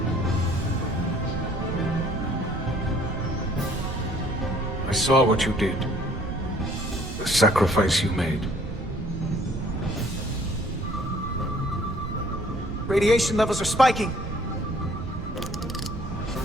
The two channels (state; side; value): noise; right; rumble, 7 dB below the sound